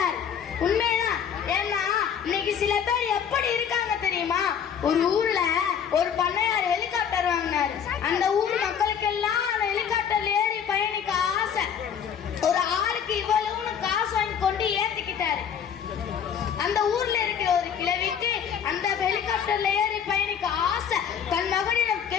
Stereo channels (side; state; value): right; quieter; 8.0 dB